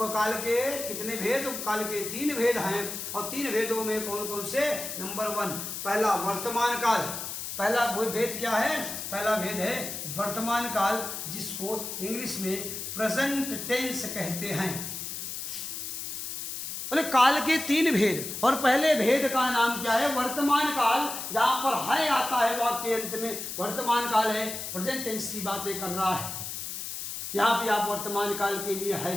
काल के कितने भेद? काल के 3 भेद हैं। और 3 भेदों में कौन कौन से? नंबर 1, पहला वर्तमान काल। पहला भेद क्या है? पहला भेद है वर्तमान काल, जिसको इंग्लिश में प्रेजेंट टेंस कहते हैं। बोले काल के 3 भेद, और पहले भेद का नाम क्या है? वर्तमान काल। जहां पर है आता है वाक्य के अंत में, वर्तमान काल है, प्रेजेंट टेंस की बातें कर रहा है। यहां भी आप वर्तमान काल के लिए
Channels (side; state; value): left; noise; hiss, 6 dB below the sound